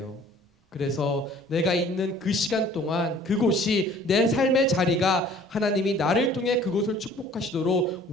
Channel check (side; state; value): both; normal; correlation 0.52